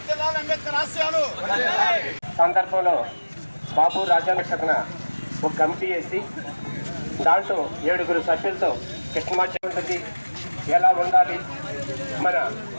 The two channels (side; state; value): both; inverted; correlation -1.00